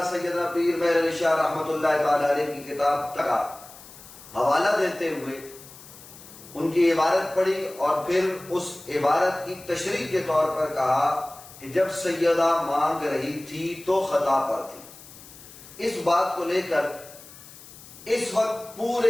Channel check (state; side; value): noise; left; hiss, 19 dB below the sound